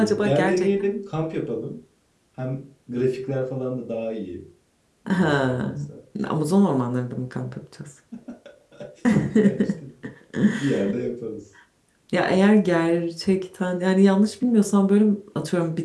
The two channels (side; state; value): both; identical; correlation 1.00